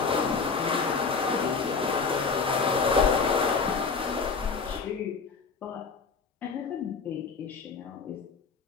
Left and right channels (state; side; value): quieter; right; 5.0 dB